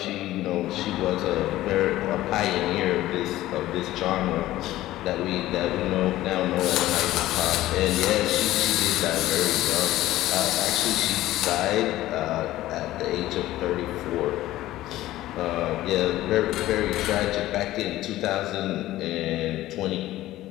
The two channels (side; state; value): right; quieter; 15.5 dB